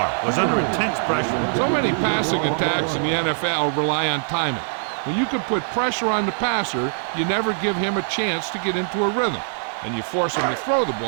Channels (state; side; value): silent; left; 64 dB below the other